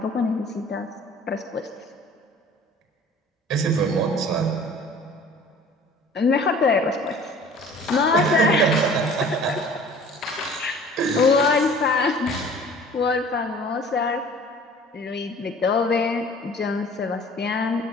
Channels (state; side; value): normal; both; correlation 0.47